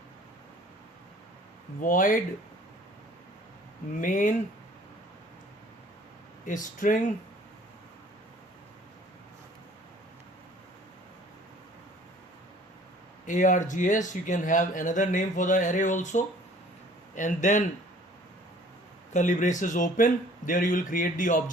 void main string args. You can have another name for the array also, and then curly braces open. There you will create the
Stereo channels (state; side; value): normal; both; correlation 0.53